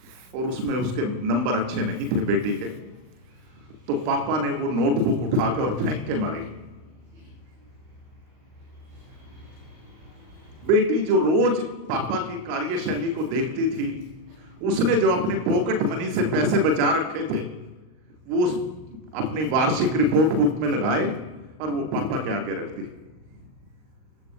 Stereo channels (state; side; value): late; left; 39 ms